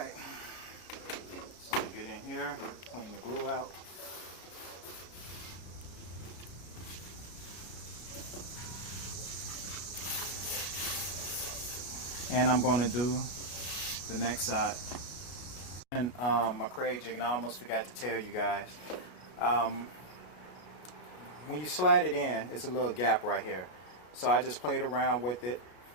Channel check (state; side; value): late; right; 33 ms